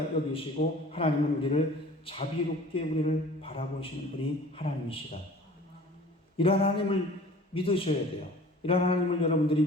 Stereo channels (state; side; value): normal; both; correlation 0.45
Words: 여기시고 하나님은 우리를 자비롭게 우리를 바라보시는 분이 하나님이시다. 이러한 하나님을 믿으셔야 돼요. 이러한 하나님을 여러분들이